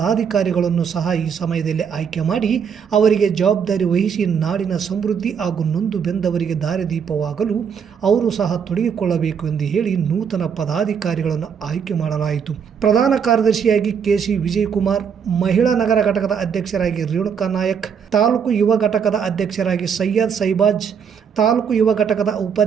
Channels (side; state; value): left; quieter; 7.1 dB